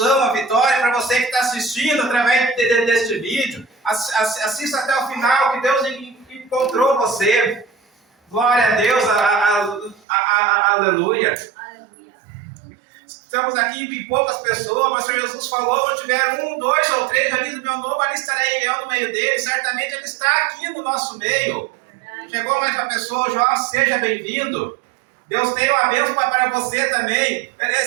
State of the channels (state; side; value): drops out; left; at 10.0 s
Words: a vitória para você que está assistindo através deste vídeo. Assista até o final, que Deus encontrou você. Glória a Deus, aleluia. Estamos aqui em poucas pessoas, mas o Senhor Jesus falou, onde tiver 1, 2 ou 3 ali do meu nome, ali estarei eu no meio dele. Certamente ele está aqui no nosso meio. Chegou mais uma pessoa, João, seja bem-vindo. Deus tem uma bênção para você também.